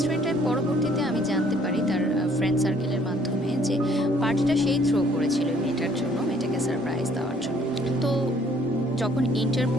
পরবর্তীতে আমি জানতে পারি তার ফ্রেন্ড সার্কেলের মাধ্যমে যে পার্টিটা সেই থ্রো করেছিল মেয়েটার জন্য, মেয়েটাকে সারপ্রাইজ দেওয়ার জন্য। তো যখন ইন্টার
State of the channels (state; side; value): normal; both; correlation 0.61